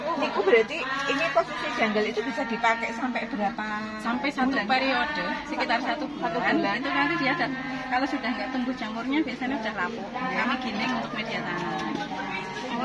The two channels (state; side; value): identical; both; correlation 1.00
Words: Niku berarti ini posisi janggal itu bisa dipakai sampai berapa? Sampai 1 periode, sekitar 1 bulan. Itu nanti dia kalau sudah nggak tumbuh jamurnya biasanya sudah lapuk. Kami giling untuk media tanam.